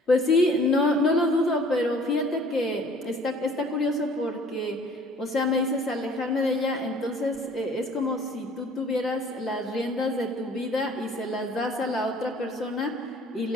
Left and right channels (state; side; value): normal; both; correlation 0.53